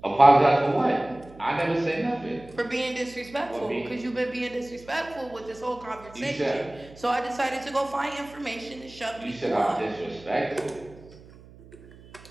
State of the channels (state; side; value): noise; right; hum, 21 dB below the sound